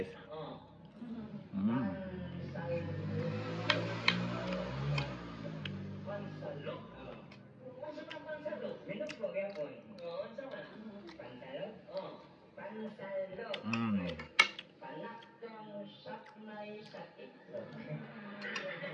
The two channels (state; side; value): identical; both; correlation 1.00